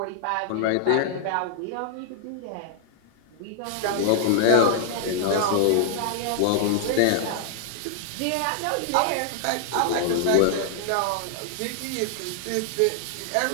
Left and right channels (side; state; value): both; different; correlation 0.00